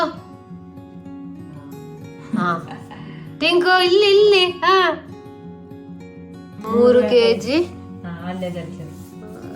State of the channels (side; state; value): both; identical; correlation 1.00